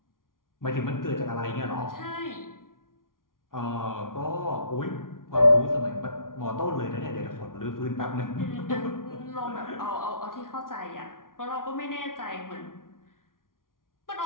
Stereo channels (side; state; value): right; late; 0.90 ms